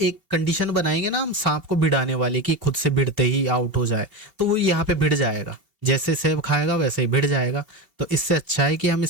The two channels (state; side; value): late; left; 1.0 ms